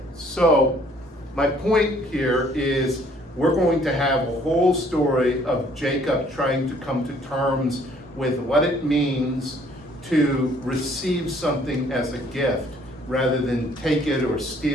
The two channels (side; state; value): both; normal; correlation 0.60